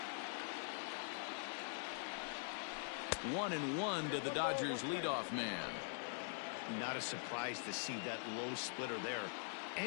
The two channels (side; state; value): right; silent; digital silence